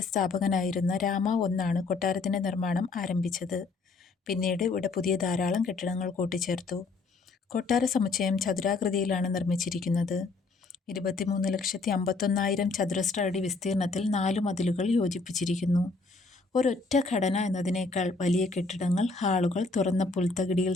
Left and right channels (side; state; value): right; quieter; 3.9 dB